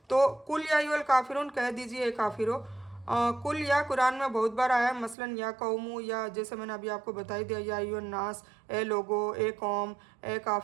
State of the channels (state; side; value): drops out; left; at 5.2 s